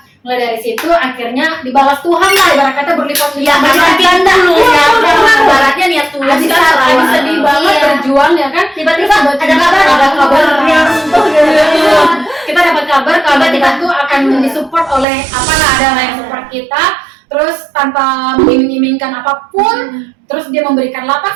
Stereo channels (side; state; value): left; drops out; at 15.1 s